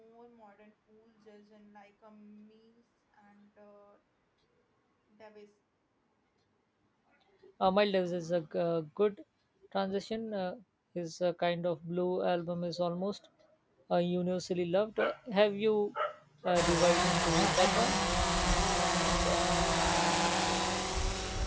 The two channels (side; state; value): both; identical; correlation 1.00